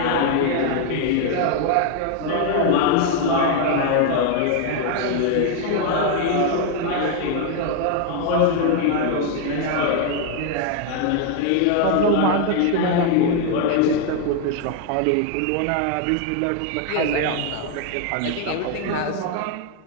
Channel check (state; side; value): different; both; correlation 0.01